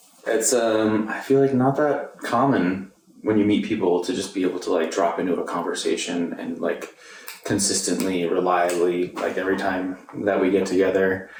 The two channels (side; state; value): both; identical; correlation 1.00